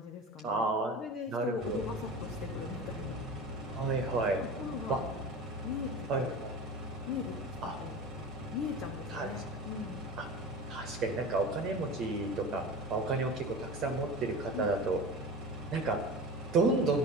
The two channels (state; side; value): normal; both; correlation 0.32